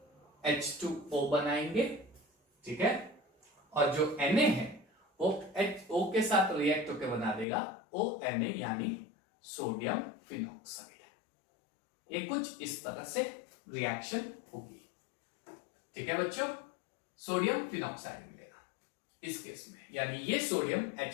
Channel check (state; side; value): drops out; right; at 7.5 s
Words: H2O बनाएंगे, ठीक है, और जो Na है वो O के साथ रिएक्ट होकर बना देगा ONA यानी सोडियम फिनॉक्साइड। ये कुछ इस तरह से रिएक्शन होगी, ठीक है बच्चों, सोडियम फिनॉक्साइड मिलेगा इस केस में, यानी ये सोडियम